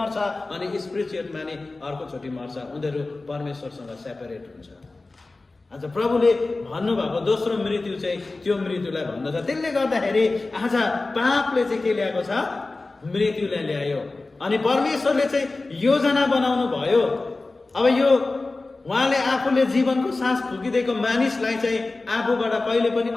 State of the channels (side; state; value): right; quieter; 3.3 dB